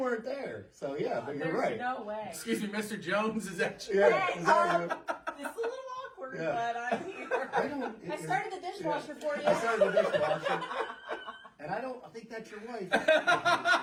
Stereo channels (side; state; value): both; identical; correlation 1.00